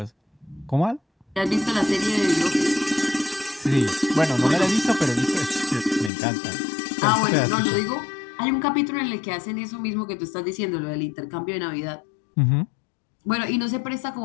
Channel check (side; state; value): right; drops out; at 6.1 s